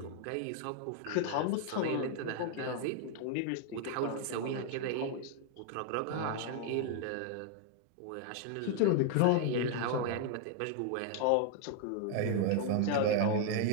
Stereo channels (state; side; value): different; both; correlation 0.00